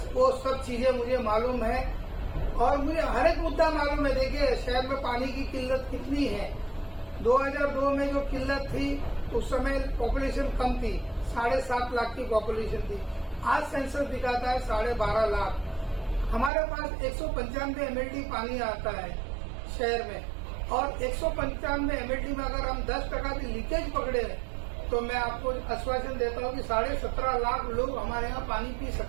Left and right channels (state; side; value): drops out; left; at 16.5 s